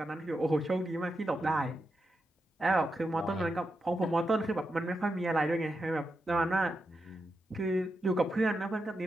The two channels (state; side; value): normal; both; correlation 0.87